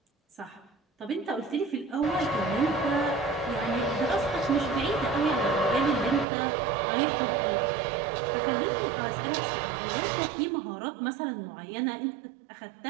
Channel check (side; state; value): left; drops out; at 6.2 s